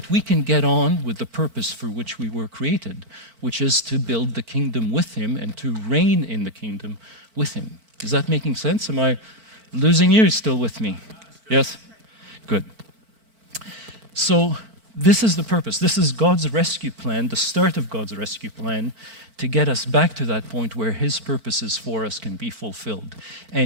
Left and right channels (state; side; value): late; left; 4.5 ms